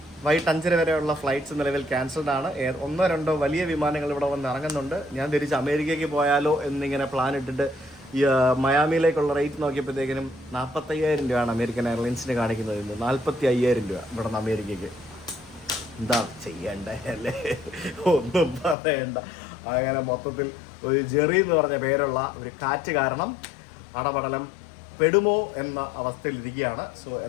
വൈകിട്ട് 5:30 വരെയുള്ള ഫ്ലൈറ്റ്സ് നിലവിൽ ക്യാൻസൽഡ് ആണ്. 1-2 വലിയ വിമാനങ്ങൾ ഇവിടെ വന്ന് ഇറങ്ങുന്നുണ്ട്. ഞാൻ തിരിച്ച് അമേരിക്കയ്ക്ക് പോയാലോ എന്നിങ്ങനെ പ്ലാൻ ഇട്ടിട്ട് മയാമിയിലേക്കുള്ള റേറ്റ് നോക്കിയപ്പോഴത്തേക്കിനും 45,000 രൂപയാണ് അമേരിക്കൻ എയർലൈൻസിന് കാണിക്കുന്നത്. 45,000 രൂപ ഇവിടെ നിന്ന് അമേരിക്കയ്ക്ക്. എന്താ ചെയ്യണ്ടേ അല്ലേ? ഒന്നും പറയണ്ട. അങ്ങനെ മൊത്തത്തിൽ ഒരു ജെറി എന്ന് പറഞ്ഞ പേരുള്ള ഒരു കാറ്റ് കാരണം അടപടലം പെടുമോ എന്ന അവസ്ഥയിലിരിക്കുകയാണ്. സോ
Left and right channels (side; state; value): right; drops out; at 18.8 s